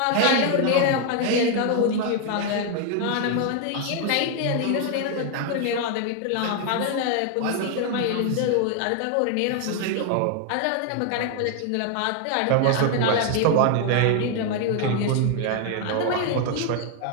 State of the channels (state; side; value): different; both; correlation 0.00